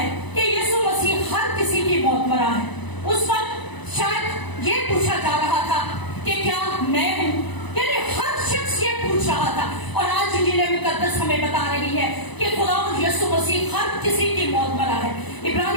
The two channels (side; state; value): right; late; 1.0 ms